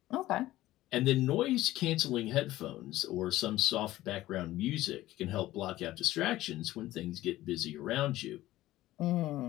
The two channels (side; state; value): right; quieter; 15.9 dB